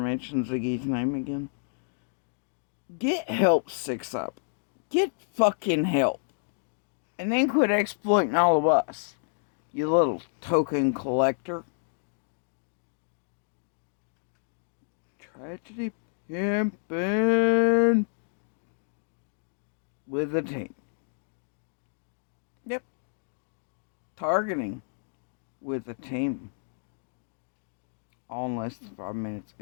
Ziggy's name again. Get help, 6 up. Get fucking help. And then quit exploiting all of us, you little token collector. Tragedy pimpin' with a team. Yep. Targeting with a team. All in less than 5 minutes.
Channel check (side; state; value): right; silent; digital silence